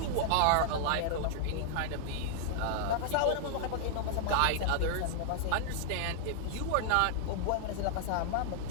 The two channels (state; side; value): different; both; correlation -0.01